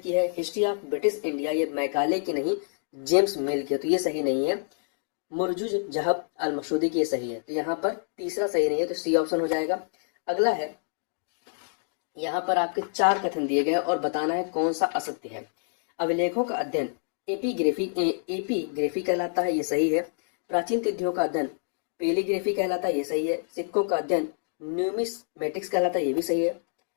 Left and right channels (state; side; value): silent; right; digital silence